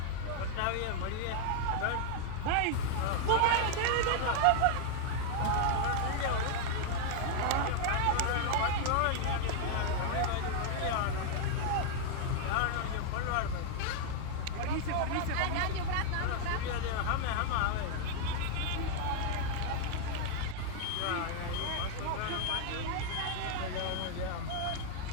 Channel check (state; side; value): different; both; correlation 0.00